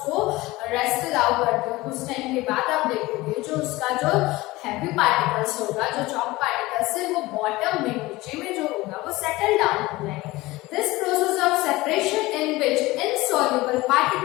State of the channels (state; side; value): quieter; right; 19.9 dB